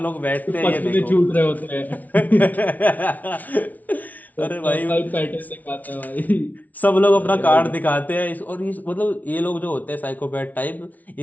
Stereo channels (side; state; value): right; late; 0.075 ms